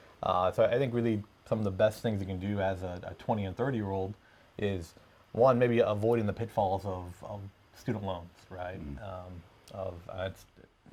So I think really some of the best things you can do as a 20 and 30-year-old is, one, maybe avoiding the pitfalls of student loans, right?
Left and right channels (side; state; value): both; identical; correlation 1.00